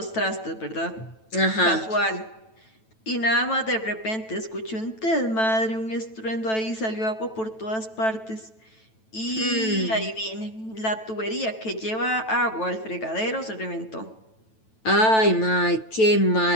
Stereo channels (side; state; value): right; late; 9.1 ms